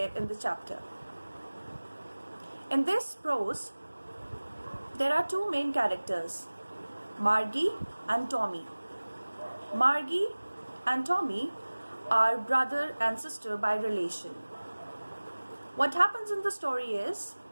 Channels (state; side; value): inverted; both; correlation -1.00